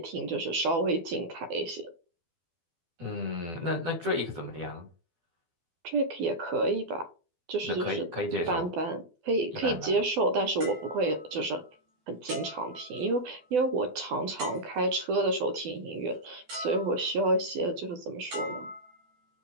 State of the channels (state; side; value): late; left; 12 ms